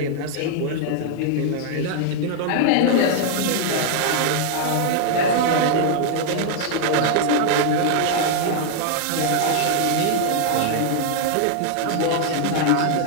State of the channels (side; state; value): both; different; correlation 0.00